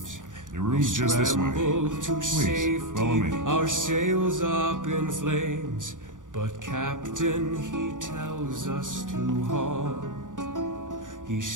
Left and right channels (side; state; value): left; late; 0.87 ms